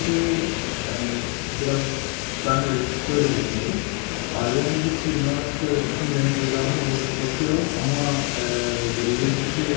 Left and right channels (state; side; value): quieter; right; 34.8 dB